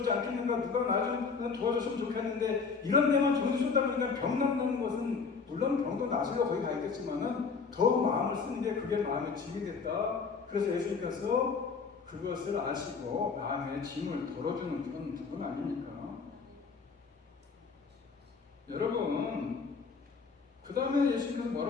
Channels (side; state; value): right; quieter; 5.2 dB